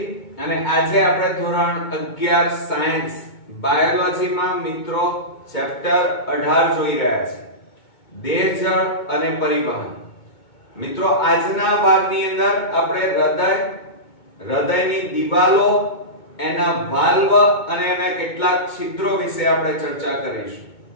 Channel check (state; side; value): late; right; 2.2 ms